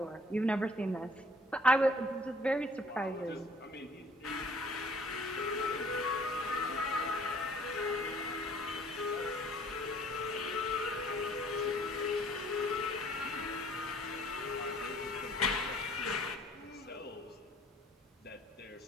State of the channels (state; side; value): normal; both; correlation 0.56